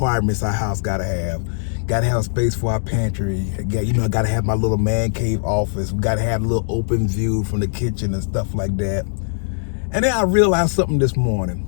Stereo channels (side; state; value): right; silent; digital silence